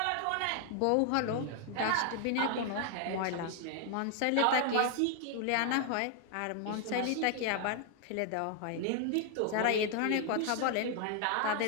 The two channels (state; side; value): different; both; correlation 0.00